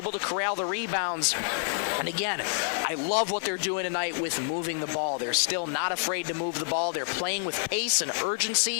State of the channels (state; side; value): silent; right; 59 dB below the other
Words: to corral the rebounds. And again, I love what they're doing tonight with moving the ball. They're still not afraid to move the ball. They're playing with pace and